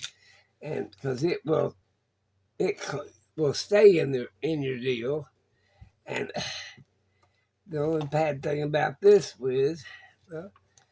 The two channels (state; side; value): identical; both; correlation 1.00